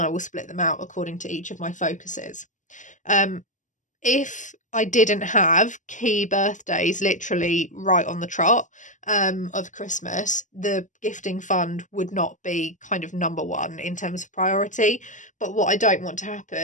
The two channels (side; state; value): right; late; 0.37 ms